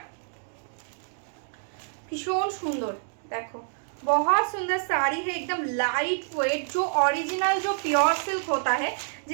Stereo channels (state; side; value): silent; left; digital silence